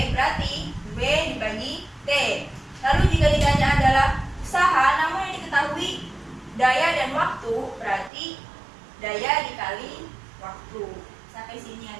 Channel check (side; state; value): left; drops out; at 8.1 s